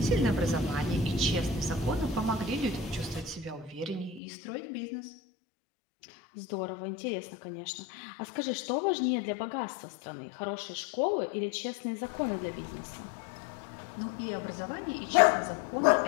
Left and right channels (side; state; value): right; drops out; at 4.2 s